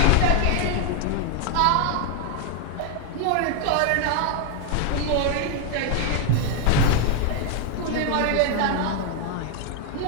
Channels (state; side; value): different; both; correlation 0.01